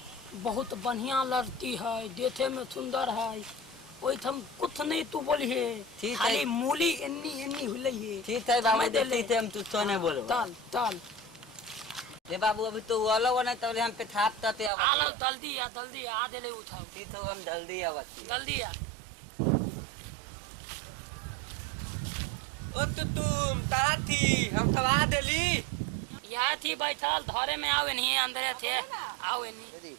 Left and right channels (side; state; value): left; drops out; at 14.7 s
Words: बहुत बढ़िया लड़ती है, देखे में सुंदर है। ओइठम कुछ नहीं तू बोलिए, खाली मूली एन्नी एन्नी हुलै है। ठीक है बाबू, ठीक है, हम तुझको नहीं बोलो। तल तल ये बाबू अभी तो वाला वो नहीं तो हम पे थाप तते अब आलो जल्दी आ देले उठाओ। ठीक है, हम जल्दी आवत जल्दी आ। ओ तो तुम कहाँ थी? हम सब आ देली। यहाँ थी बैठल, धरे में आओ नहीं अंदर थे, आओ नहीं। दीदी